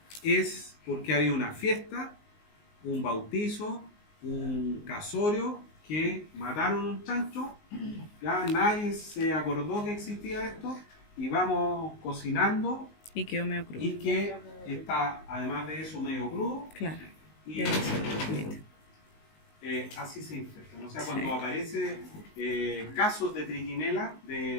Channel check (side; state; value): right; late; 19 ms